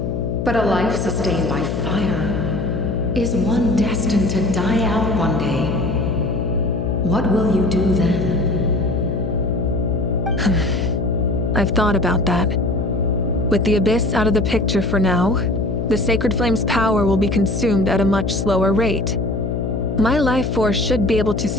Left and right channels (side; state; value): left; noise; hum, 2 dB below the sound